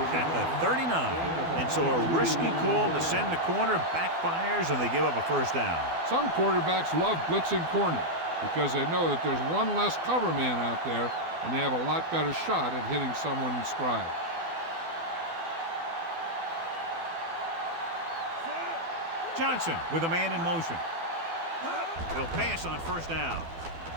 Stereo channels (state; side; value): late; left; 12 ms